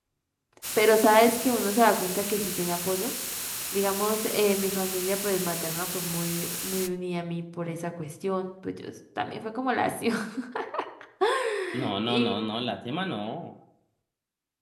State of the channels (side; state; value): both; identical; correlation 1.00